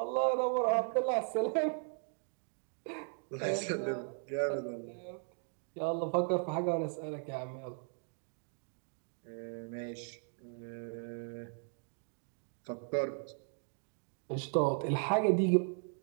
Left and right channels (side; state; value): left; silent; 53 dB below the other